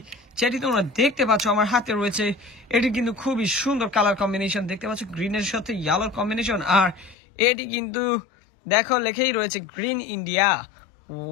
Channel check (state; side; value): drops out; right; at 7.2 s